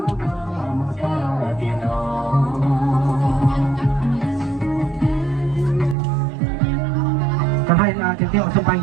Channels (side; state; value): left; drops out; at 6.0 s